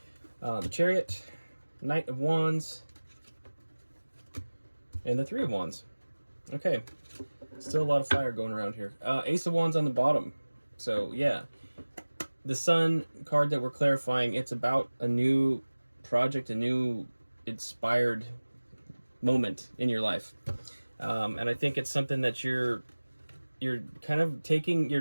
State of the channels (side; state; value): both; inverted; correlation -1.00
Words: The Chariot, Knight of Wands, and the Three of Wands. Okay. Still a lot of fire going around here. Ace of Wands on the bottom. So, yeah. The Sun card that we're clarifying, it's about a new project, a new inspired moment in your life. And I think it's something that you're kind of taking,